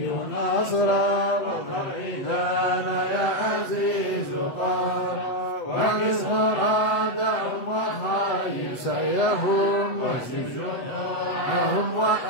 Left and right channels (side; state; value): right; late; 8.1 ms